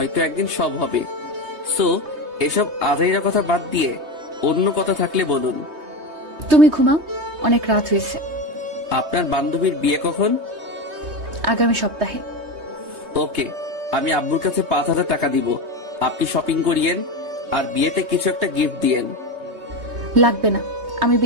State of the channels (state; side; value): late; left; 3.2 ms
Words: একদিন সব হবে। সো এসব আজাইরা কথা বাদ দিয়ে অন্য কথা থাকলে বলুন। তুমি ঘুমাও, অনেক রাত হয়েছে। আপনার বান্ধবীর বিয়ে কখন? আগামী সপ্তাহে। ওকে, আমি আব্বুর কাছে 5,000 টাকা দিব। আপনি শপিং করিয়েন আর বিয়েতে কিছু একটা গিফট দিয়েন। লাগবে না, আমি